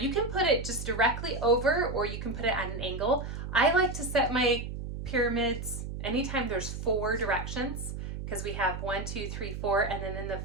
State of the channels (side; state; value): right; noise; hum, 6 dB below the sound